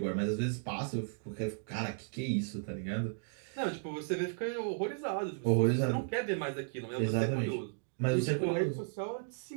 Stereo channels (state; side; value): silent; left; digital silence